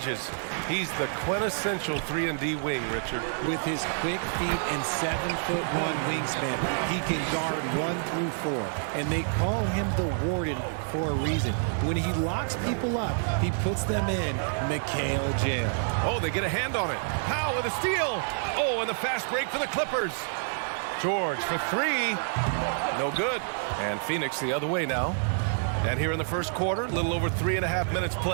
he's the quintessential 3-and-D wing, Richard. With his quick feet and 7'1" wingspan, he can guard 1 through 4. And they call him the Warden for a reason. When he locks people up, he puts them in Mikal jail. Oh, they get a hand on it. Powell with a steal. Oh, and the fast break for the Clippers. George for 3. No good. And Phoenix the other way now. And here in the first quarter, a little over 3.5 minutes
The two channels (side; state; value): left; silent; digital silence